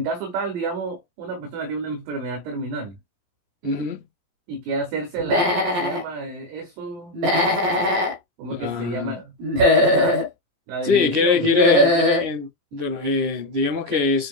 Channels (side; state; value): left; late; 17 ms